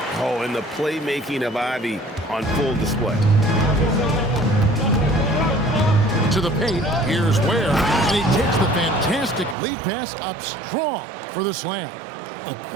Oh, and the playmaking of Ivy on full display. To the paint, here's Ware, and he takes the fantastic lead pass up strong for the slam. A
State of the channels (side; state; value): left; drops out; at 9.6 s